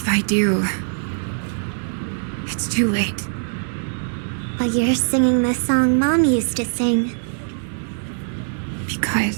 I do, it's too late. But you're singing the song Mom used to sing.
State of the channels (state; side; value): silent; left; digital silence